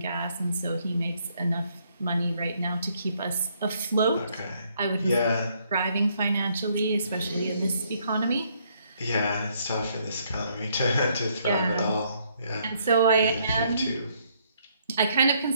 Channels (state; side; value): inverted; both; correlation -0.69